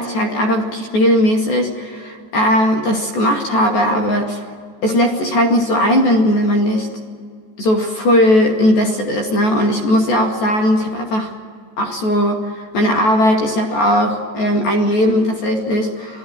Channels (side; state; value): right; late; 14 ms